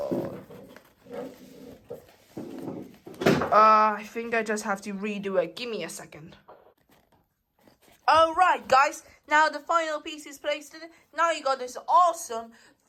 I think I just have to redo it. Give me a second. Alright guys, now the final piece is placed in it. Now you got this awesome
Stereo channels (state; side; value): identical; both; correlation 1.00